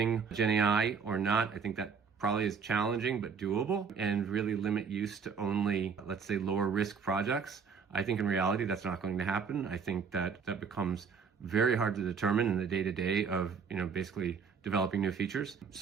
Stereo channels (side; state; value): left; quieter; 6.1 dB